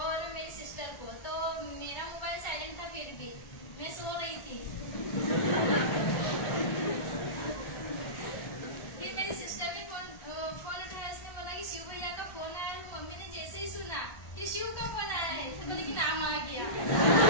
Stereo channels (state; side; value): late; right; 1.4 ms